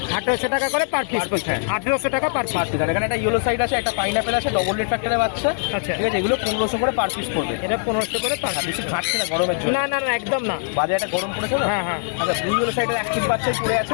1800 টাকা করে পার পিস। Per piece, হ্যাঁ। 1800 টাকা পার পার পিস। পিস। আর এখানে একটা ইয়েলো সাইড আছে, একটা পাইনাপেল আছে, ডবল রেড ফ্যাক্টরের বাচ্চা। আচ্ছা। ঠিক আছে, এগুলো 1500 করে পার পিস পড়বে। এটা 1500 করে পার আর পিস। বেশি ঘাটছে না গরমের জন্য। না না না, একদম না। বাজারে একটা গরম পড়েছে না। হ্যাঁ হ্যাঁ, আচ্ছা, দুই ইয়েলো সাইডের অ্যাক্টিভ বাচ্চাই পড়ে আছে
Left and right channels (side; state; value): right; silent; digital silence